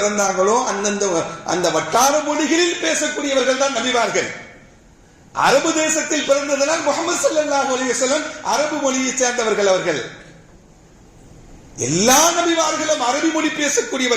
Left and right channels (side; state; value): both; identical; correlation 1.00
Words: அந்தந்த அந்த வட்டார மொழிகளில் பேசக்கூடியவர்கள் தான் நபிமார்கள். அரபு தேசத்தில் பிறந்ததனால் முஹம்மது ஸல்லல்லாஹு அலைஹி வஸல்லம் அரபு மொழியை சேர்ந்தவர்கள். அவர்கள் எல்லா நபிமார்களும் அரபி மொழி